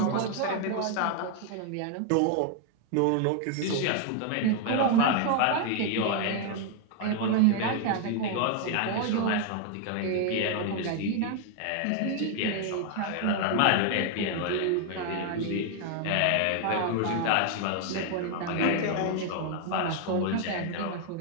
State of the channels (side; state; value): both; different; correlation 0.00